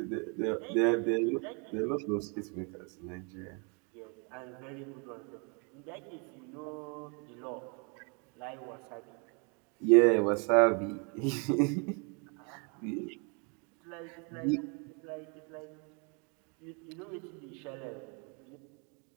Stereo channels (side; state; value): left; quieter; 35.0 dB